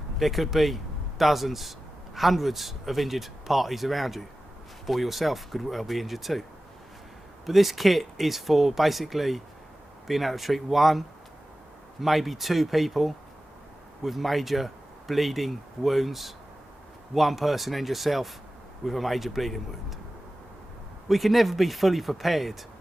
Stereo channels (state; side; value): normal; both; correlation 0.95